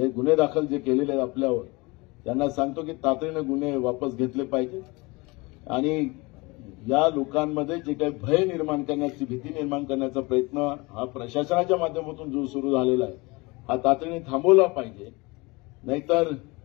गुन्हे दाखल जे केलेले आहेत आपल्यावर त्यांना सांगतो की तातडीने गुन्हे वापस घेतले पाहिजे. आणि या लोकांमध्ये जे काही भय निर्माण करण्याची भीती निर्माण करण्याचा प्रयत्न हा प्रशासनाच्या माध्यमातून जो सुरू झालेला आहे हा तातडीने थांबवला पाहिजे. नाहीतर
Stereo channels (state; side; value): quieter; right; 25.0 dB